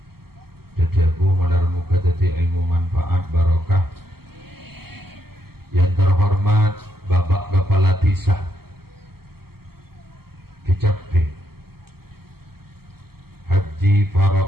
dedebu malar muga dadi ilmu manfaat barokah. Yang terhormat Bapak Kepala Desa Kecapbe Haji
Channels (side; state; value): left; late; 0.95 ms